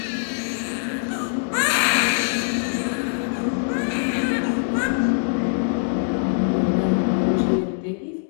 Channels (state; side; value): silent; right; digital silence